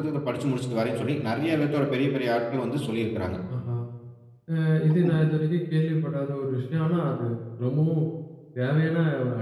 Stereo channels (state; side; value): identical; both; correlation 1.00